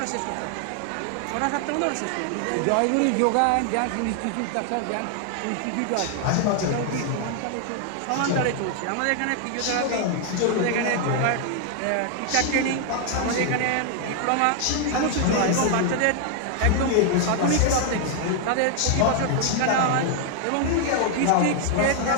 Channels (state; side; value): different; both; correlation 0.00